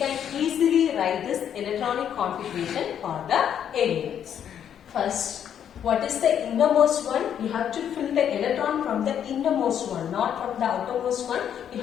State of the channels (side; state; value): right; quieter; 9.1 dB